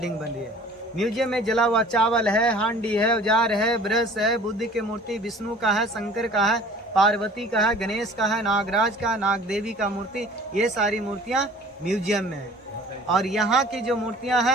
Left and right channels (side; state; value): both; normal; correlation 0.48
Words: बनी है। म्यूजियम में जला हुआ चावल है, हांडी है, औजार है, ब्रश है, बुद्ध की मूर्ति, विष्णु का है, शंकर का है, पार्वती का है, गणेश का है, नागराज का, नाग देवी का मूर्ति, ये सारी मूर्तियां म्यूजियम में है। और यहाँ की जो मूर्तियां